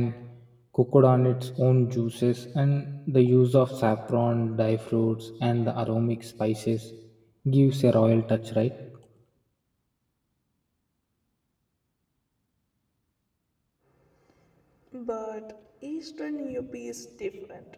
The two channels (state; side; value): identical; both; correlation 1.00